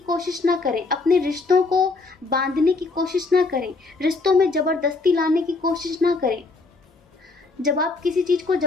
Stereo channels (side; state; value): right; quieter; 3.8 dB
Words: ना करें, अपने रिश्तों को बांधने की कोशिश ना करें, रिश्तों में ज़बरदस्ती लाने की कोशिश ना करें। जब आप किसी चीज़ को